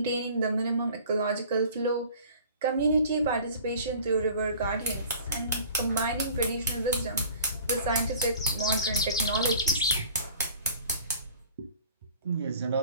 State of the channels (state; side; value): inverted; both; correlation -0.45